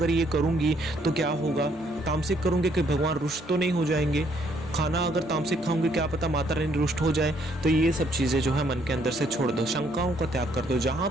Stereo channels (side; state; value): both; normal; correlation 0.68